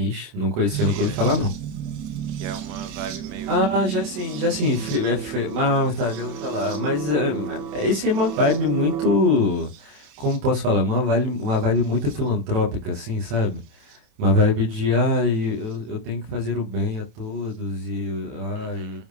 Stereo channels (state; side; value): late; left; 27 ms